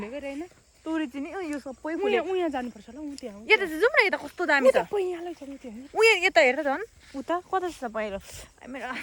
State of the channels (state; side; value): identical; both; correlation 1.00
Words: रहेन तोरी चाहिँ नि यो सबै फुले। उहाँ जानुपर्छ ल उहाँ त्यहाँ यता चाहिँ जाउँ न। यता कस्तो दामी छ पैयालै छ त्यहाँ उयो यता हेर झन् उता कता छ पहिरो मेरो